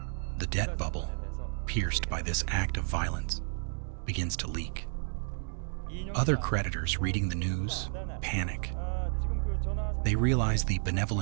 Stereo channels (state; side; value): silent; left; 57 dB below the other